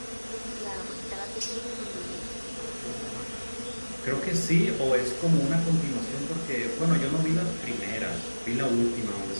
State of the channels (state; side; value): inverted; both; correlation -1.00